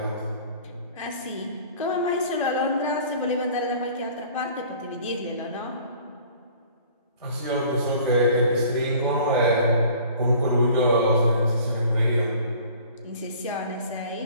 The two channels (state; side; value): inverted; both; correlation -0.49